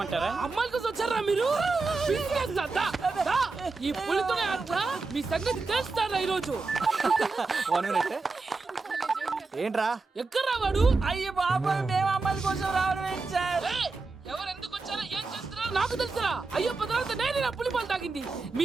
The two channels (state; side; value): quieter; left; 3.9 dB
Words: అమ్మాయిల కోసం వచ్చారా మీరు? ఈ పులితోనే అట్లా మీ సంగతి తెలుస్తారా ఈరోజు? ఏంట్రా ఎక్కడ రావాడు? అయ్యో బాబా, మేము అమ్మాయిల కోసం రావడం ఏంటి సార్? ఎవరు ఎందుకు వచ్చారో ఏం చేస్తున్నారో నాకు తెలుసా? అయ్యో పదార్థ నేనే నా పులిపాలు తాగింది.